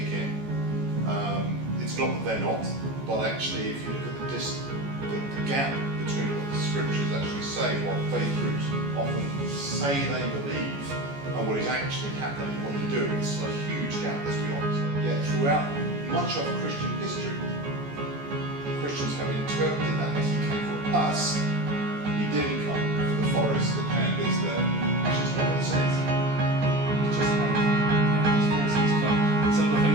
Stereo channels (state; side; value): late; left; 14 ms